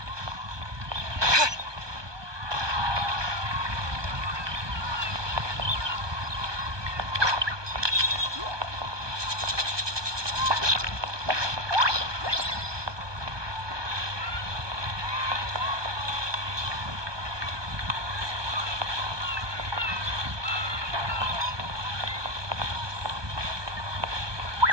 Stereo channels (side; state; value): left; late; 1.2 ms